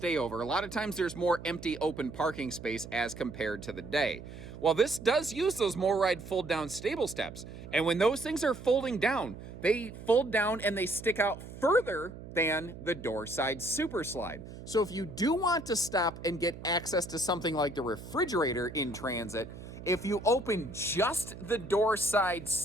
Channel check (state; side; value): noise; right; hum, 13 dB below the sound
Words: a lot of times there's more empty open parking space as compared to the day. Well, this does use those MORryde fold down stable steps. And when those things are folding down, they fold down and they stick out further than the door side super slide. So if you do want to stop and get access to something like the refrigerator in transit, if you open just the door side